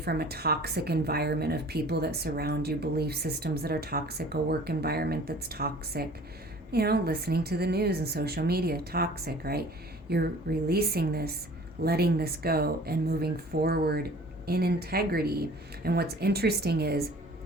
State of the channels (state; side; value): normal; both; correlation 0.48